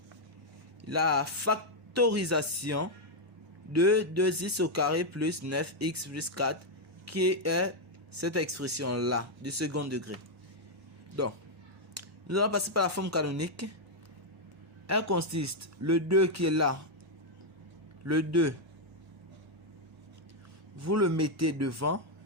la factorisation de 2x au carré plus 9x plus 4 qui est cette expression-là du second degré. Donc, nous allons passer par la forme canonique. Elle consiste, le 2 qui est là, le 2, vous le mettez devant,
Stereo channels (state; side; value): normal; both; correlation 0.00